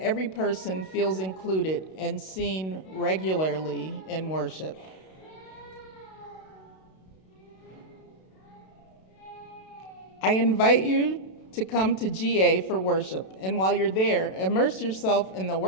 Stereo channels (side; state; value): right; late; 32 ms